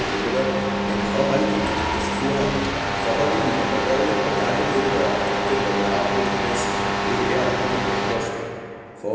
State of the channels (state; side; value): identical; both; correlation 1.00